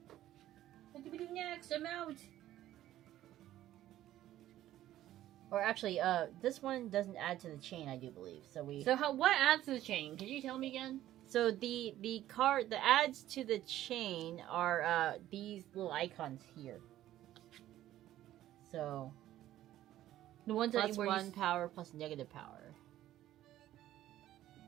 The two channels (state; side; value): quieter; left; 13.5 dB